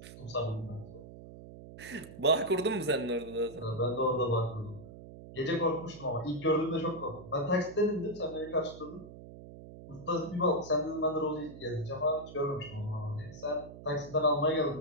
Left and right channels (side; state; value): right; noise; hum, 15 dB below the sound